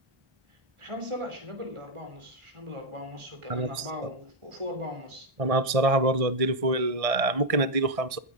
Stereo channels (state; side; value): late; left; 1.6 ms